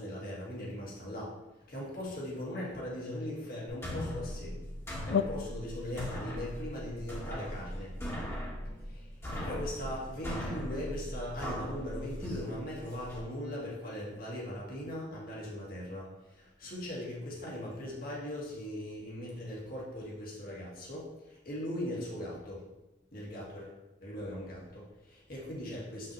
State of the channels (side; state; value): both; normal; correlation 0.52